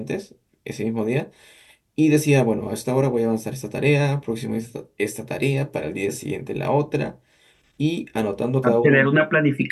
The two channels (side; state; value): both; identical; correlation 1.00